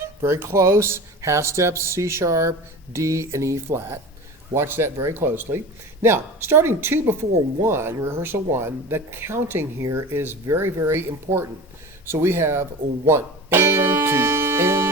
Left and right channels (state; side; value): normal; both; correlation 0.33